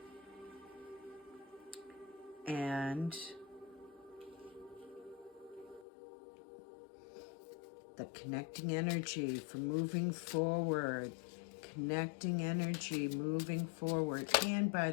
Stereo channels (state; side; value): drops out; right; at 5.9 s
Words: And the connecting energy for moving forward. Connecting energy moving forward. And by